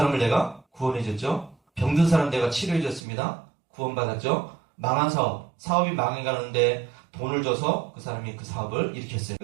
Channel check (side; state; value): left; drops out; at 3.0 s